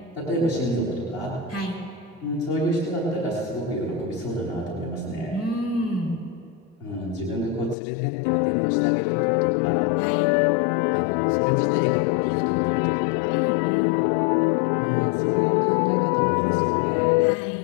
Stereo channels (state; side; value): drops out; right; at 7.8 s